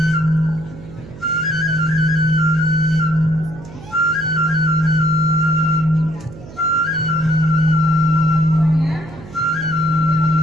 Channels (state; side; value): noise; right; hum, 17 dB below the sound